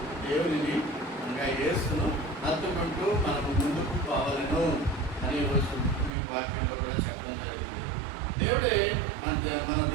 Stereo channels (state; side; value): drops out; left; at 6.2 s